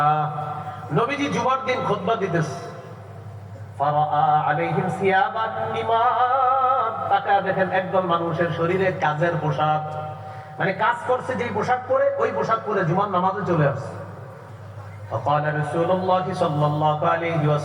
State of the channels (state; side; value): identical; both; correlation 1.00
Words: নবীজি জুমার দিন খুতবা দিতেছে। ফারাআ আলাইহিম সিয়াবান ইমান। তাকা দেখেন একদল মানুষের শরীরে কাজের পোশাক, মানে কাজ করছে যেই পোশাক পরে ওই পোশাক পরে জুমার নামাজে চলে আসছে। فقال رسول الله صلى الله عليه